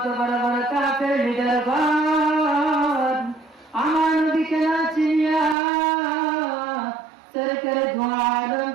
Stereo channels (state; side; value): drops out; left; at 5.6 s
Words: বড় বড় কাফের লিডারগণ আমার নবীকে না চিনিয়া সরকারে ধোঁয়া